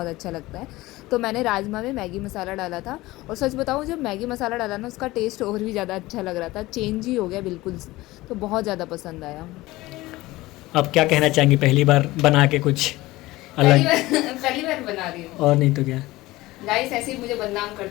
अच्छा लगता है। तो मैंने राजमा में मैगी मसाला डाला था, और सच बताऊँ जब मैगी मसाला डाला ना उसका टेस्ट और भी ज़्यादा अच्छा लग रहा था, चेंज ही हो गया बिल्कुल। तो बहुत ज़्यादा पसंद आया। अब क्या कहना चाहेंगी, पहली बार बना के कुछ अलग? पहली बार बना रही हूँ। और नहीं तो क्या गाइस, ऐसे ही मुझे बदनाम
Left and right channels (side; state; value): right; quieter; 18.9 dB